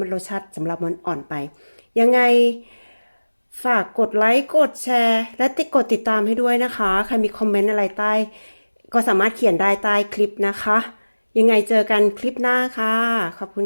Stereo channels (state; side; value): inverted; both; correlation -1.00